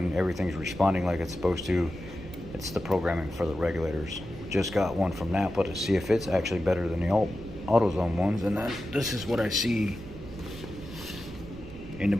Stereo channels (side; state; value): right; noise; rumble, 14 dB below the sound